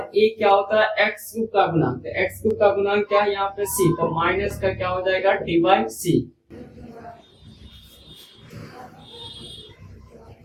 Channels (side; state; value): both; identical; correlation 1.00